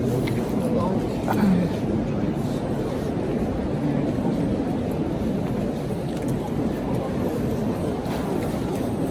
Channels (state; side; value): identical; both; correlation 1.00